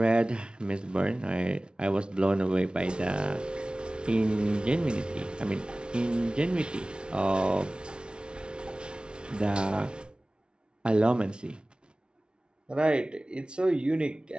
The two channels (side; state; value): left; late; 0.056 ms